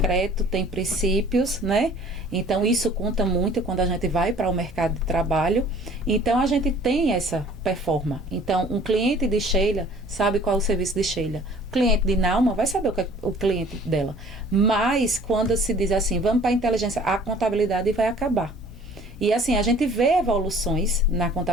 tem princípios, né? Então, isso conta muito quando a gente vai para o mercado de trabalho. Então, a gente tem essa performance. Então, um cliente de Sheila sabe qual é o serviço de Sheila. O cliente de Nauma vai saber o que é o cliente dela. Mas, quando se diz assim, vamos para a inteligência, a contabilidade vai acabar. E, assim, a gente vê evoluções na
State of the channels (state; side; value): normal; both; correlation 0.52